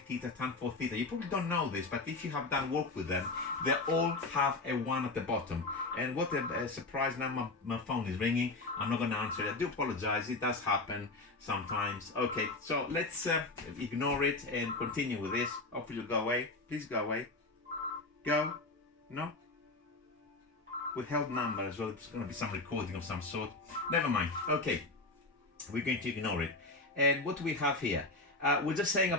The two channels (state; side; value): quieter; right; 3.2 dB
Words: tan 4 theta, you probably don't know this, but if you have done work with them, they all have a 1 at the bottom. And what a surprise, now my phone is ringing. I'm not going to answer it. I do apologize, it does happen sometimes. Okay, so let's ignore it and continue with this. Hopefully you'll go away. Please go away. Go. No? Withheld number as well. It's going to be some recording of some sort. Never mind. Okay, we're going to ignore it. And what do we have here? We're just saying